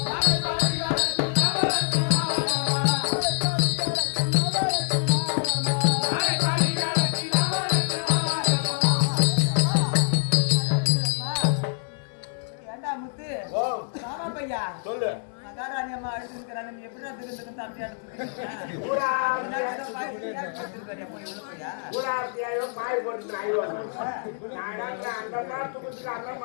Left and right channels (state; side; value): silent; right; digital silence